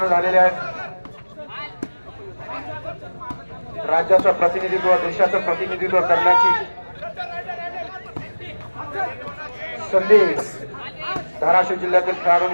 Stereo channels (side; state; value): both; inverted; correlation -1.00